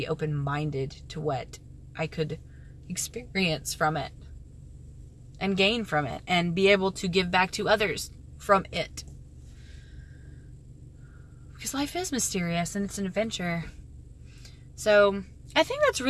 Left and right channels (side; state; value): both; identical; correlation 1.00